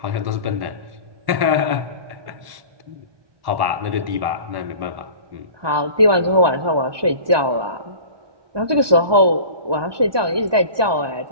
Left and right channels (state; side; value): late; left; 1.2 ms